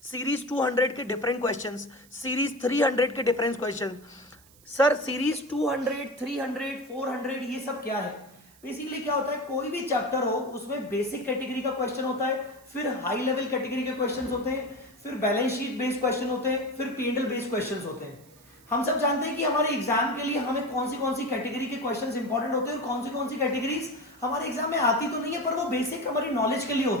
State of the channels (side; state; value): right; noise; hiss, 26 dB below the sound